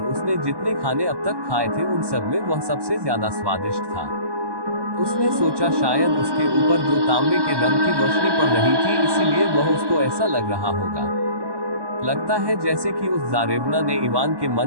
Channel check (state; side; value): late; left; 1.1 ms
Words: उसने जितने खाने अब तक खाए थे उन सब में वह सबसे ज्यादा स्वादिष्ट था। उसने सोचा शायद उसके ऊपर जो तांबे के रंग की रोशनी पड़ रही थी इसीलिए वह उसको ऐसा लग रहा होगा। लगता है जैसे कि उस जारेबना ने इवान के